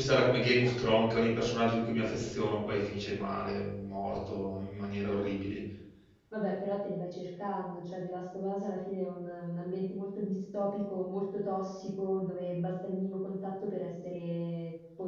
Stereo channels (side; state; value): both; identical; correlation 1.00